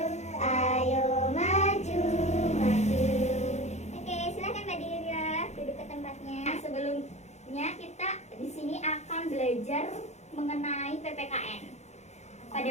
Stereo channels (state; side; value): late; right; 0.33 ms